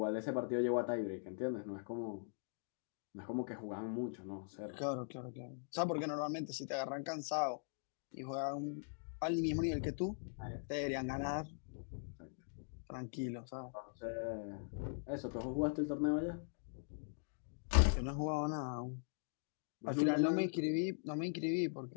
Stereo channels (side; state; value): right; silent; digital silence